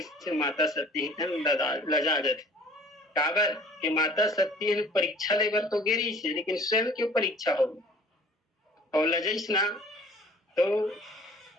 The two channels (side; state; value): both; normal; correlation 0.50